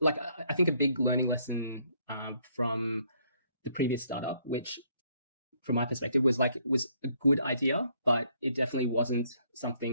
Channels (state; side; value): inverted; both; correlation -0.68